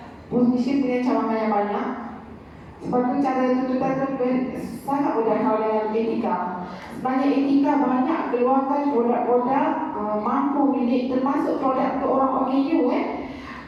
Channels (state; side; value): identical; both; correlation 1.00